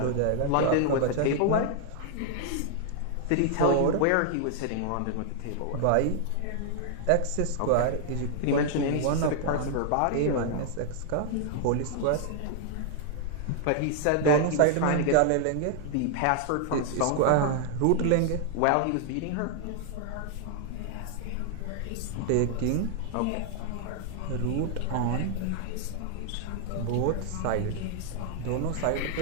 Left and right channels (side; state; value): both; different; correlation -0.01